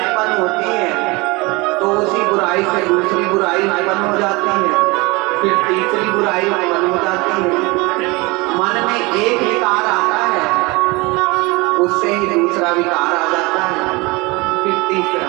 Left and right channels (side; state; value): left; quieter; 24.7 dB